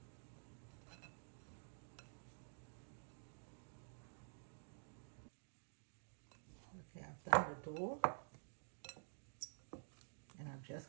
Okay, I've done the dough. And I'm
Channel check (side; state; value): left; silent; digital silence